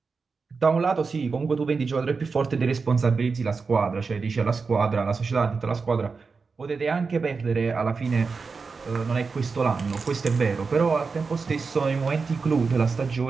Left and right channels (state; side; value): quieter; left; 4.7 dB